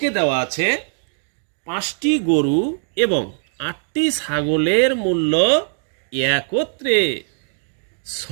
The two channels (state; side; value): silent; left; digital silence